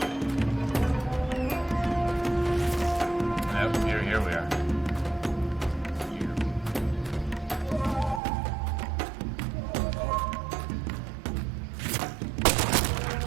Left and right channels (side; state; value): left; drops out; at 8.2 s